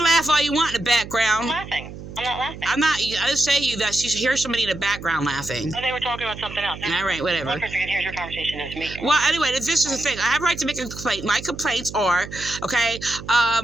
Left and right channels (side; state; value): right; noise; hum, 12 dB below the sound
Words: laugh all you want in the background. I'm laughing. I'm not laughing. I'm not. I just say to you that you hear somebody in the background laughing. Oh, they were talking about something else. All right, whatever. One person can hear your conversation is me. Well, anyway, this is the thing. I have a right to make a complaint. My complaints are, okay,